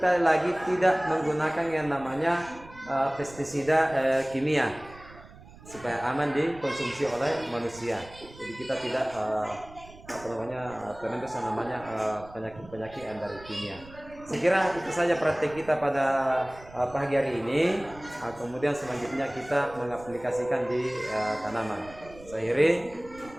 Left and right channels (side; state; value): right; noise; rumble, 20 dB below the sound